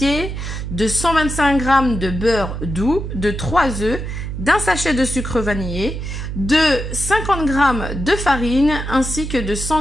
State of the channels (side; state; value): right; noise; hum, 6 dB below the sound